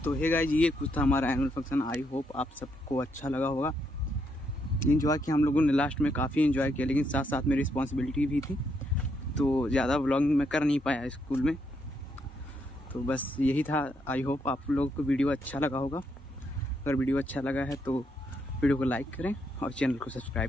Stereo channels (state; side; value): normal; both; correlation 0.77